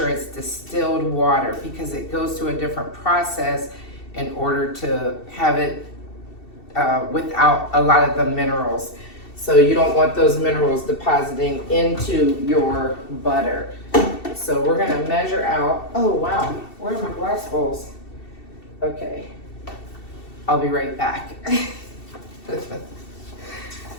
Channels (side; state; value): right; late; 2.7 ms